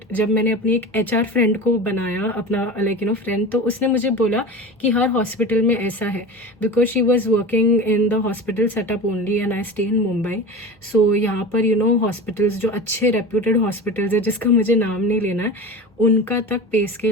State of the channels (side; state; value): both; normal; correlation 0.31